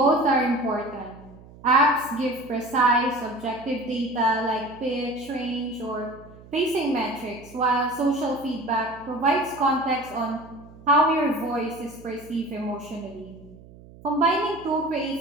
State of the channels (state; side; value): noise; right; hum, 21 dB below the sound